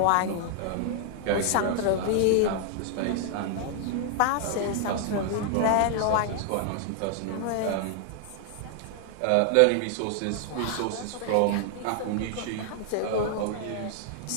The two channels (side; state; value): both; different; correlation 0.00